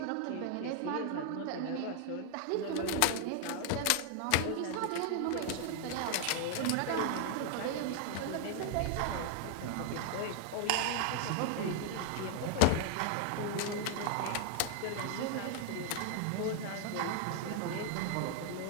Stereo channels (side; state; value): both; different; correlation 0.00